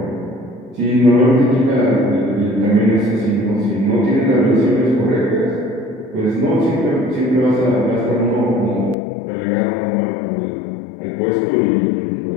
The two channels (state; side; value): drops out; right; at 9.0 s